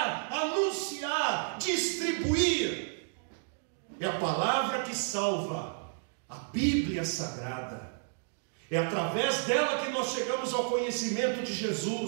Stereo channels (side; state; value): left; silent; digital silence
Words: anunciar, distribuir. É a palavra que salva, a Bíblia Sagrada. É através dela que nós chegamos ao conhecimento de